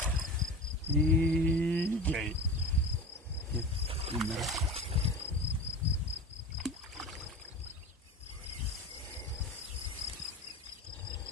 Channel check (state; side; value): normal; both; correlation 0.32